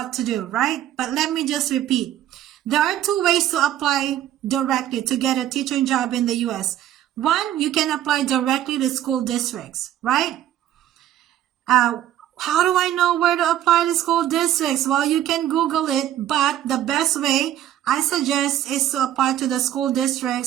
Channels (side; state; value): left; quieter; 12.1 dB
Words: to do, right? But let me just repeat. There are two ways to apply directly to get a teaching job in the U.S. One, you can apply directly to school districts, right? How do I know where to apply to school districts? Well, you can Google it, but the best way I suggest is to apply to the school